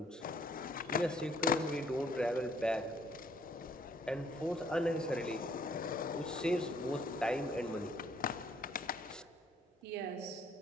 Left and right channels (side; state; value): both; normal; correlation 0.63